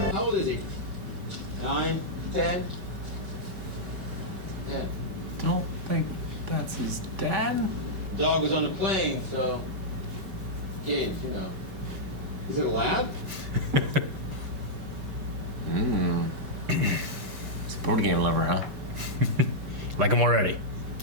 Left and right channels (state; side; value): late; left; 5.2 ms